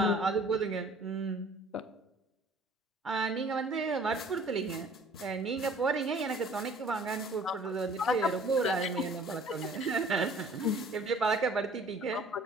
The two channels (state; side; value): normal; both; correlation 0.52